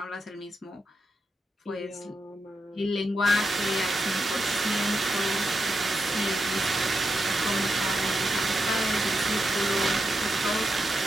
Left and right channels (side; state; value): both; normal; correlation 0.85